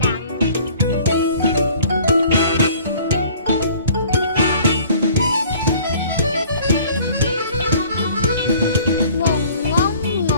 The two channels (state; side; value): inverted; both; correlation -0.51